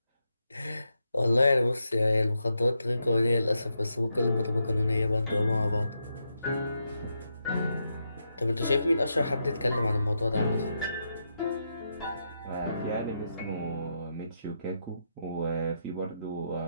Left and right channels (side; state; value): both; inverted; correlation -0.83